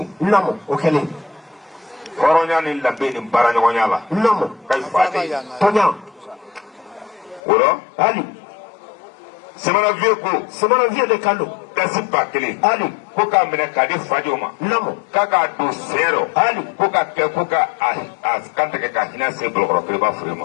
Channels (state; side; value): drops out; right; at 7.4 s